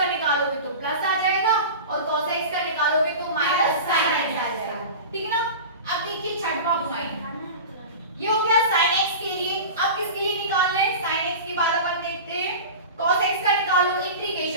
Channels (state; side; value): inverted; both; correlation -0.31